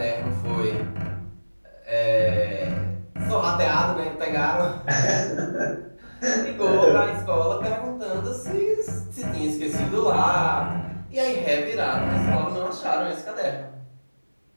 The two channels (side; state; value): both; inverted; correlation -1.00